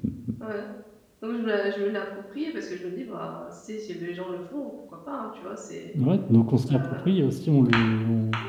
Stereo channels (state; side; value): identical; both; correlation 1.00